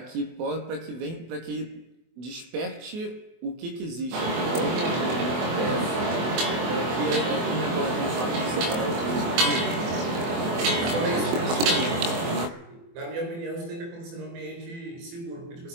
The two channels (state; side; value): late; left; 24 ms